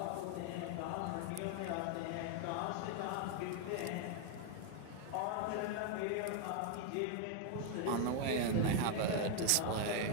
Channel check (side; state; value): both; different; correlation 0.00